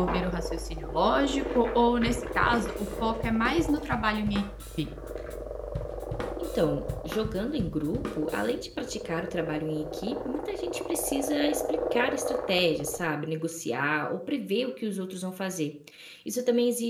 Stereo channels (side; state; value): both; identical; correlation 1.00